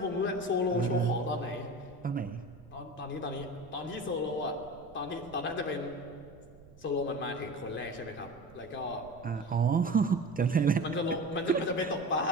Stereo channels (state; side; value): noise; right; rumble, 22 dB below the sound